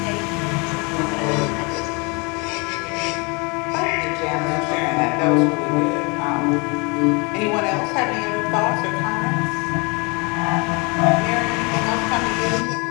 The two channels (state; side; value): quieter; right; 29.7 dB